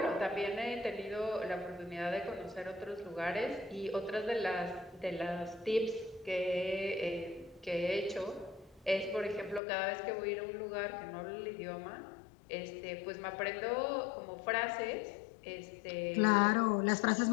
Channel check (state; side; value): drops out; right; at 9.6 s